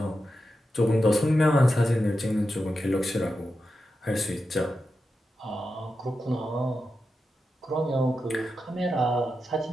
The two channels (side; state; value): both; normal; correlation 0.89